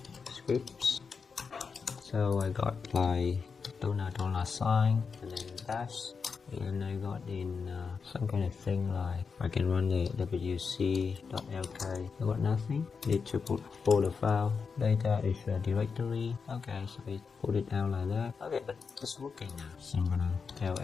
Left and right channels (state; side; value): quieter; right; 5.4 dB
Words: scripts. So I got like $sign and then dash, and I got in some kind of thing like I can run the wc.lk. I got nothing. Need to put folder file. Data is a directory. Okay, so we put it out like that. Okay, but it's working now. So I'm gonna